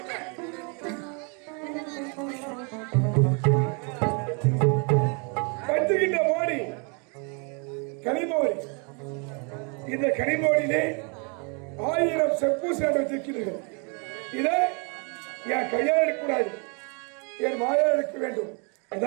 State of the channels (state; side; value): quieter; left; 35.4 dB